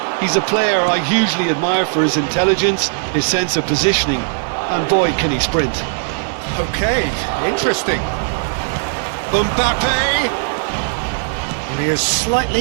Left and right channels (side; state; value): left; silent; digital silence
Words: He's a player I hugely admire for his intelligence, his sense of positioning, and boy, can he sprint. Okay, interesting. Mbappe! And he has slightly